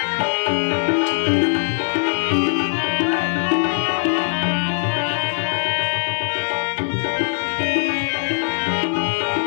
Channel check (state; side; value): silent; right; digital silence